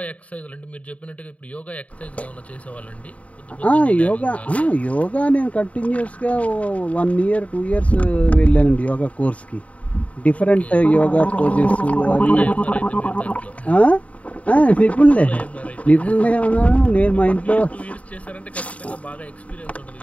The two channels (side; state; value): right; late; 0.067 ms